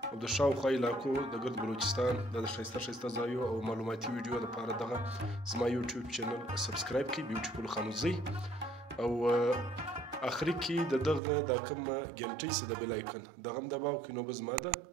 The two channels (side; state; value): left; drops out; at 11.2 s